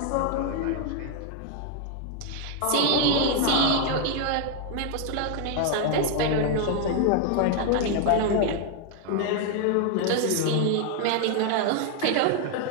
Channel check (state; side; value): different; both; correlation 0.00